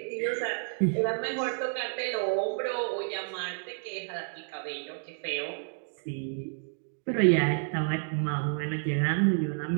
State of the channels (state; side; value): silent; left; digital silence